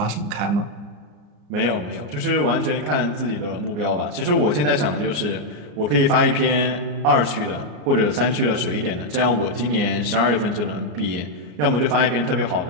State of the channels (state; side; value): late; left; 34 ms